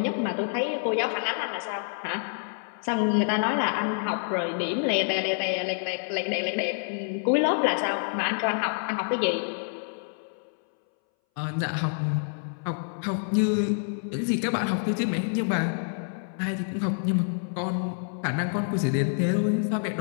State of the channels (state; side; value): silent; right; 60 dB below the other